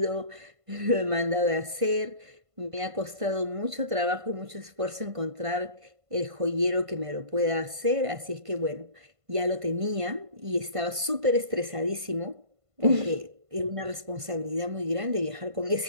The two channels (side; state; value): left; late; 1.5 ms